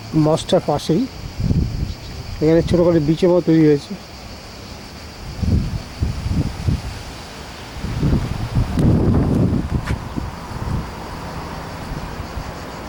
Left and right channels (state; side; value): identical; both; correlation 1.00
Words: মস্কটার পাশেই এখানে ছোটো করে বিচের মতো তৈরি হয়েছে।